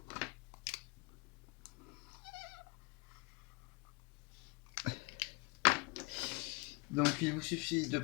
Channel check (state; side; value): quieter; right; 23.4 dB